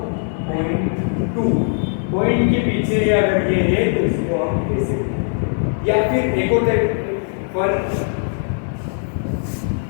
पॉइंट के पीछे अगर ये है तो इसको हम कैसे, या फिर एक और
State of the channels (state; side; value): silent; right; 62 dB below the other